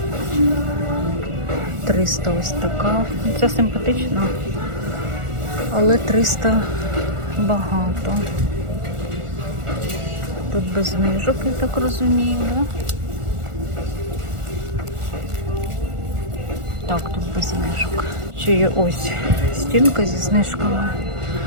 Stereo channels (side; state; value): left; late; 1.4 ms